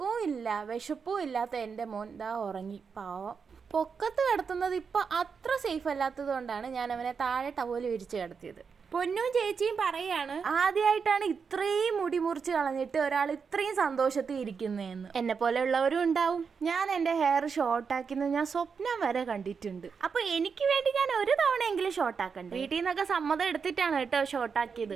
ഇല്ല വിശപ്പും ഇല്ലാത്ത എൻ്റെ മോൻ ദാ ഉറങ്ങി. പാവം. പൊക്കത്ത് കിടത്തുന്നത് ഇപ്പൊ അത്ര സേഫ് അല്ലാത്തത് കൊണ്ടാണ് ഞാൻ അവനെ താഴെ ടവല് വിരിച്ച് കിടത്തിയത്. പൊന്നും ചേച്ചിയും പറയാണ്, ആദ്യമായിട്ടാണ് ഇത്രയും മുടി മുറിച്ച് കളഞ്ഞിട്ട് ഒരാൾ ഇത്രയും സന്തോഷത്തിൽ ഇരിക്കുന്നതെന്ന്. എന്നെ പോലെ ഉള്ളവരും ഉണ്ടാവും. ഞാൻ എൻ്റെ ഹെയർ ഷോർട്ടാക്കുന്നത് ഞാൻ സ്വപ്നം വരെ കണ്ടിട്ടുണ്ട്. അപ്പൊ എനിക്ക് വേണ്ടി ഞാൻ ഒരു തവണയെങ്കിലും ഷോർട്ടാക്കണ്ടേ? വീട്ടിൽ നിന്നൊക്കെ സമ്മതം എടുത്തിട്ടാണ് കേട്ടോ ഷോർട്ടാക്കിയത്.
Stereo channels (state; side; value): quieter; left; 5.8 dB